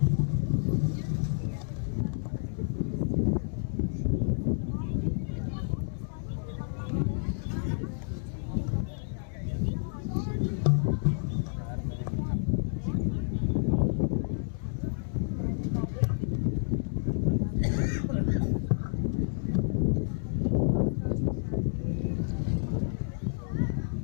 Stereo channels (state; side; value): silent; right; 58 dB below the other